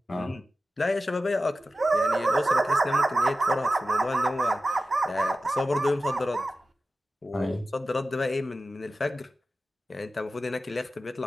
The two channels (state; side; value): normal; both; correlation 0.94